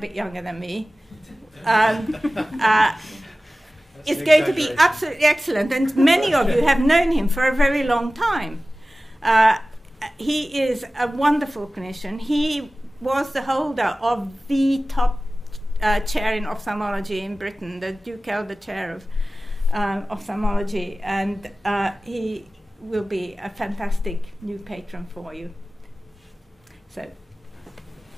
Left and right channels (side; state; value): both; normal; correlation 0.97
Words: younger than me, is going to be absolutely excellent, and many of you have known him for a very long time. He is a wonderful clinician. He was the holder of the top chair in ophthalmology in Britain, the Duke Elder Chair of Ophthalmology, and he will be a fantastic new patron for you. So.